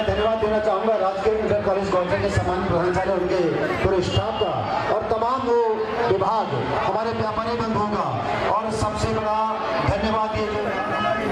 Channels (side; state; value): both; identical; correlation 1.00